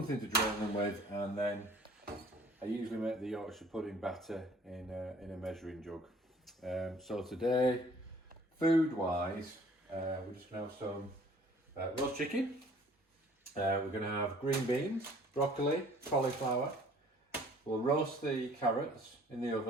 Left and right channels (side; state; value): both; normal; correlation 0.54